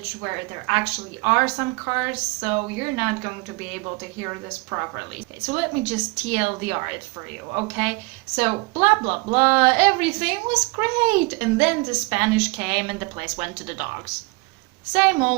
where there actually are some cars, so you're not going to be able to hear this properly. Okay, so let me just TLDR it for you, okay? So blah blah blah, everything was great, and then the Spanish came and the place went to the dogs. Same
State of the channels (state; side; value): quieter; left; 26.9 dB